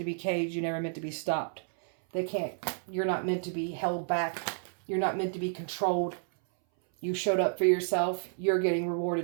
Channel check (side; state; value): left; silent; 57 dB below the other